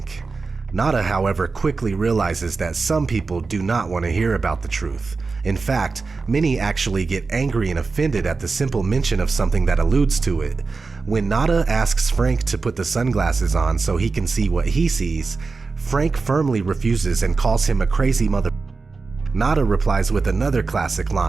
Nada, however, quickly realizes that some people do not want to hear about the truth. In fact, many actually get angry and offended at the simple mention of something that alludes to it. When Nada asks Frank to put the sunglasses on so he can see what he sees, Frank firmly refuses and calls him a crazy mother. Nada replies with another classic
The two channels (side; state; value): left; quieter; 4.2 dB